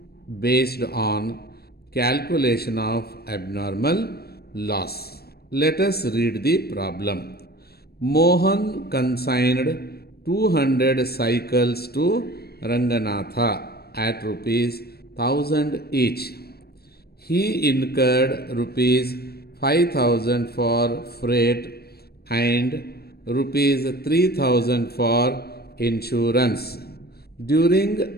based on calculation of abnormal loss. Let us read the problem. Mohan consigned 200 cycles to Ranganatha at rupees 1000 each. He incurred rupees 5000 for freight and rupees 3000 for insurance.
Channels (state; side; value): late; right; 0.46 ms